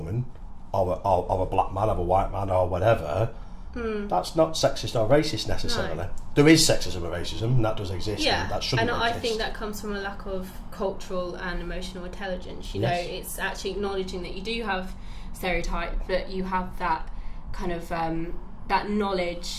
or a black man, or a white man, or whatever, that's not sexist or racist necessarily. No. There is sexism and racism, and that does exist. Yeah, and that shouldn't and exist. I think that comes from a lack of cultural and emotional intelligence. You know, it's actually acknowledging that you do have stereotype, but you have that kind of that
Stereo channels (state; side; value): identical; both; correlation 1.00